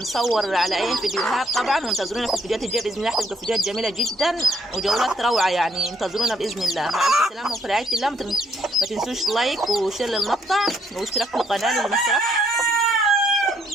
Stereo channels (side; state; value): both; normal; correlation 0.70